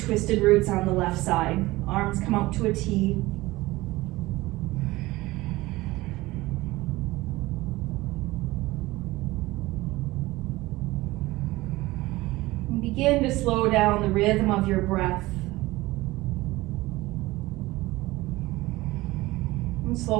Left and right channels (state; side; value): quieter; left; 19.4 dB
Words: twisted roots on the left side. Arms come out to a T. And begin to slow down the rhythm of your breath. And